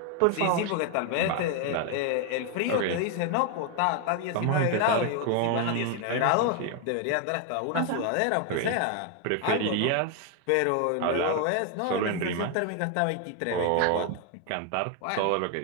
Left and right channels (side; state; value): both; different; correlation 0.01